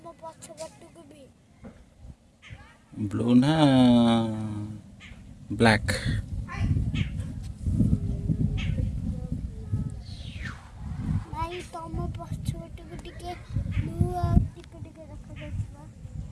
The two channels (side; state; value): both; identical; correlation 1.00